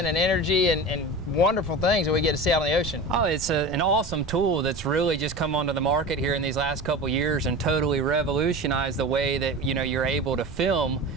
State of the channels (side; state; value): right; noise; rumble, 14 dB below the sound